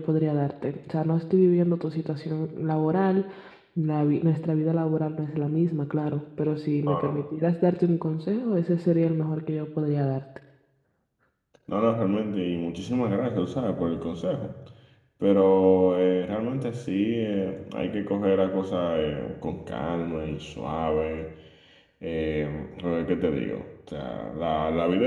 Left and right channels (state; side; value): identical; both; correlation 1.00